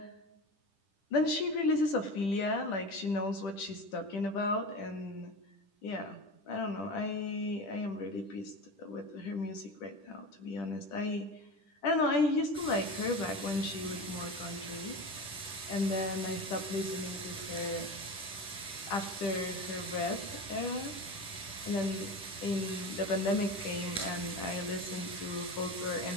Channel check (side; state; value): right; late; 10 ms